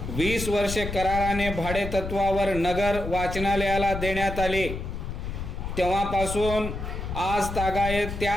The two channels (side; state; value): left; noise; rumble, 6 dB below the sound